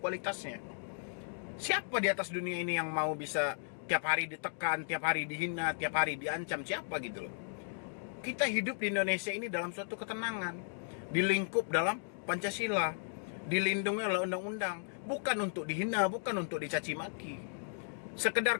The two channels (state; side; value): silent; right; digital silence